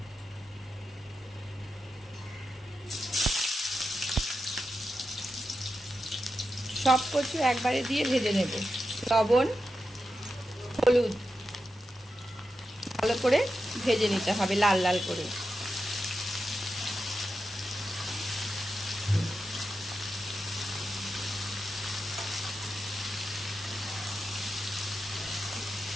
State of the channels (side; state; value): both; normal; correlation 0.89